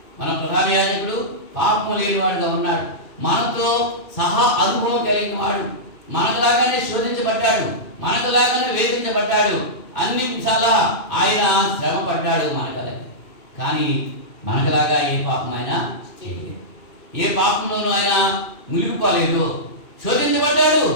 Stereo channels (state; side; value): late; right; 2.5 ms